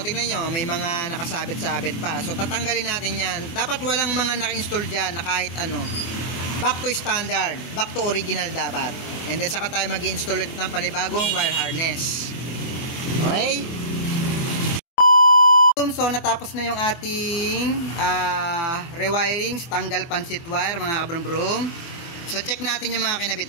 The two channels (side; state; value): right; late; 23 ms